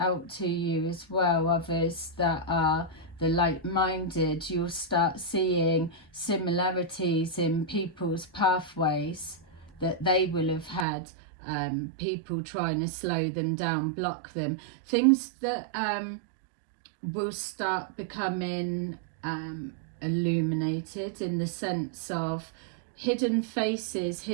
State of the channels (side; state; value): left; drops out; at 10.9 s